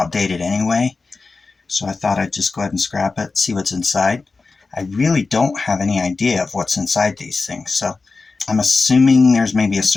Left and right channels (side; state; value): right; quieter; 4.1 dB